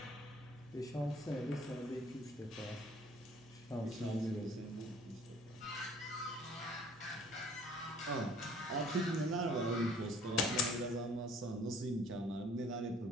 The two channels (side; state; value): right; noise; hum, 24 dB below the sound